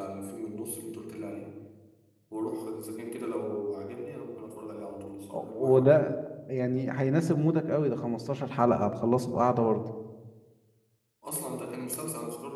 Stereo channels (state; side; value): identical; both; correlation 1.00